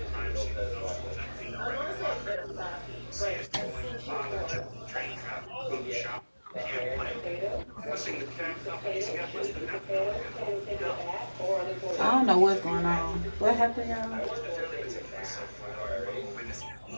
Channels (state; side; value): inverted; both; correlation -1.00